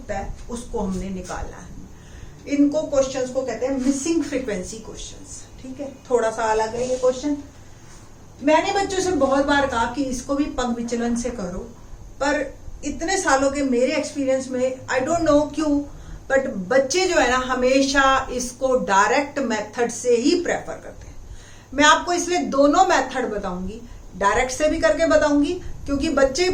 है, उसको हमने निकालना है। इनको क्वेश्चंस को कहते हैं मिसिंग फ्रीक्वेंसी क्वेश्चंस, ठीक है। थोड़ा सा अलग है ये क्वेश्चन। मैंने बच्चों से बहुत बार कहा कि इसको भी पंग विचलन से करो, पर इतने सालों के मेरे एक्सपीरियंस में आई डोंट नो क्यों, बट बच्चे जो है ना हमेशा इसको डायरेक्ट मेथड से ही प्रेफर करते हैं। मैं आपको इसलिए दोनों मेथड बताऊंगी, डायरेक्ट से भी करके बताऊंगी, क्योंकि बच्चे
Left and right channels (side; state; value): both; identical; correlation 1.00